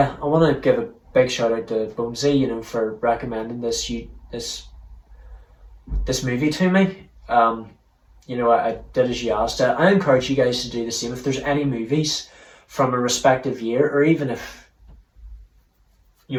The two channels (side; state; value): both; identical; correlation 1.00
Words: I want to give big shout out to Bonesy, you know, for recommending this movie to me. You know, I did as you asked. I encourage you guys to do the same. If there's any movies from a respective year, or even if, you